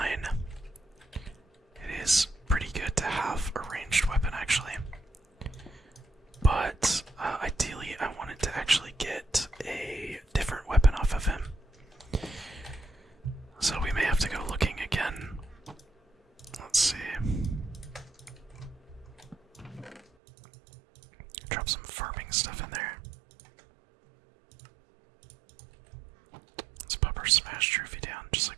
It is pretty good to have a ranged weapon, actually. But ideally, I wanted to actually get a different weapon off of him. So we may have to go looking again. Let's see. Drop some farming stuff in there. Let's pop our smash trophy down, just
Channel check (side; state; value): left; drops out; at 20.0 s